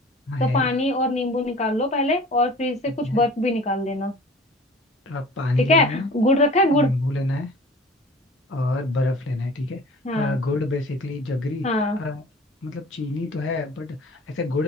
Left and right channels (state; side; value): normal; both; correlation 0.44